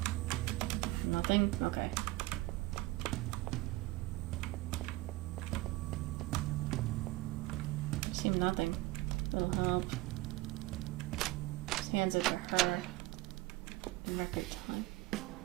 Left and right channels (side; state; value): left; quieter; 19.5 dB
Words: Nothing? Okay. Seem nothing. Little help. Just hands it to her in record time.